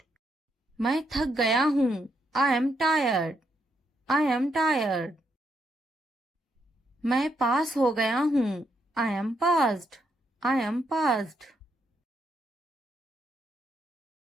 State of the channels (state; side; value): normal; both; correlation 0.78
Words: मैं थक गया हूँ, I am tired, I am tired. मैं पास हो गया हूँ, I M passed, I am passed.